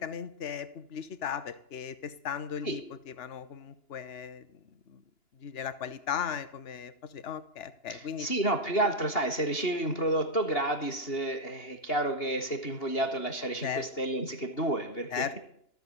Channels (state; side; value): late; right; 2.9 ms